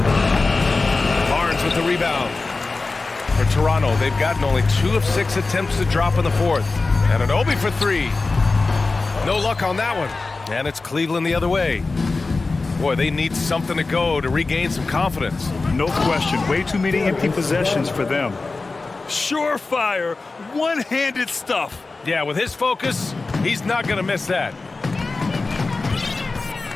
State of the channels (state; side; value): quieter; right; 3.7 dB